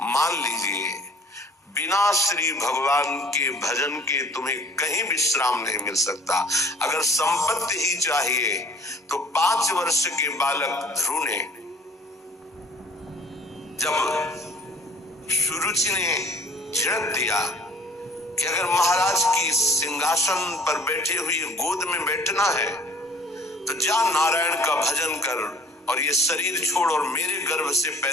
मान लीजिए बिना श्री भगवान के भजन के तुम्हें कहीं विश्राम नहीं मिल सकता। अगर संपत्ति ही चाहिए तो 5 वर्ष के बालक ध्रुव ने जब सुरुचि ने झिड़क दिया कि अगर महाराज की सिंहासन पर बैठे हुए गोद में बैठना है तो जा नारायण का भजन कर और ये शरीर छोड़ और मेरे गर्भ से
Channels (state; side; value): normal; both; correlation 0.52